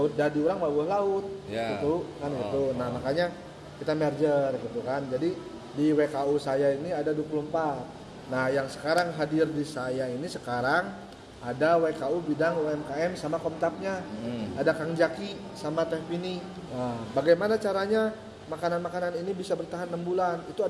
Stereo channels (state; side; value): identical; both; correlation 1.00